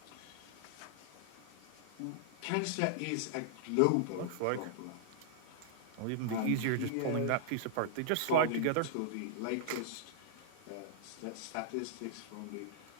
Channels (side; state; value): both; different; correlation -0.01